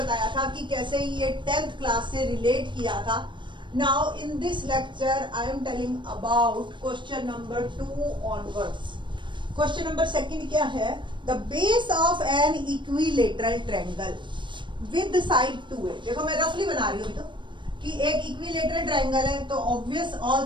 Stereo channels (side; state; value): left; late; 0.23 ms